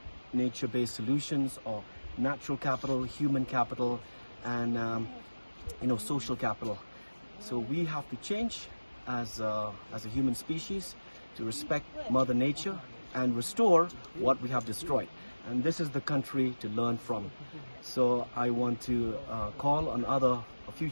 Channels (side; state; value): both; inverted; correlation -1.00